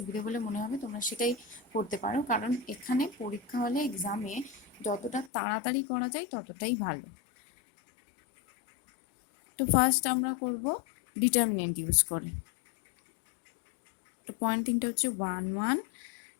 বলে মনে হবে তোমরা সেটাই করতে পারো, কারণ এখানে পরীক্ষা হলে এক্সামে যতটা তাড়াতাড়ি করা যায় ততটাই ভালো। তো ফার্স্ট আমরা করব ডিটারমিনেন্ট ইউজ করে। তো পয়েন্ট তিনটা হচ্ছে 1 1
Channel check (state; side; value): drops out; right; at 5.3 s